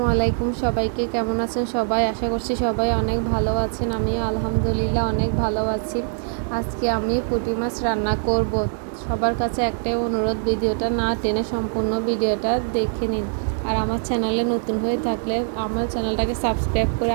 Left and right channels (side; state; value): left; silent; digital silence